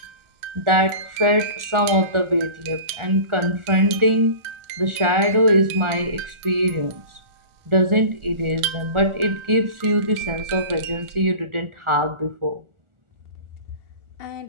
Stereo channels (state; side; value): late; left; 1.4 ms